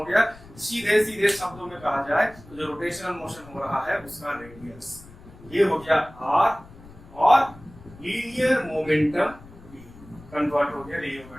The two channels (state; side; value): noise; left; rumble, 20 dB below the sound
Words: गया। सीधे शब्दों में कहा जाए तो जो रोटेशनल मोशन हो रहा है उसका रेडियस, ये हो गया r, और लीनियर मोमेंटम कन्वर्ट हो गया लीनियर